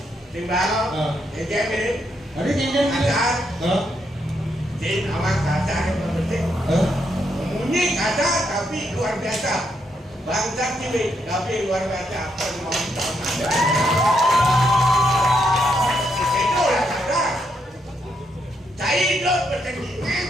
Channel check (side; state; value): both; normal; correlation 0.78